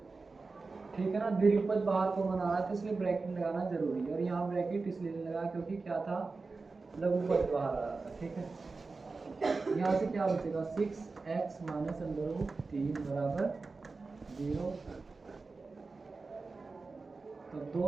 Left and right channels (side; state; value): left; quieter; 4.0 dB